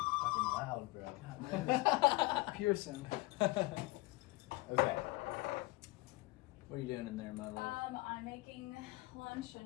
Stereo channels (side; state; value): right; quieter; 22.1 dB